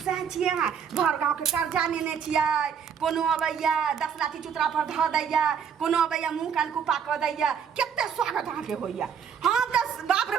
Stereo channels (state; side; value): quieter; left; 7.3 dB